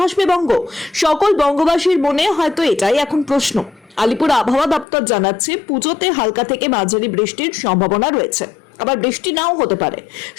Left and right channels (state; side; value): drops out; right; at 4.9 s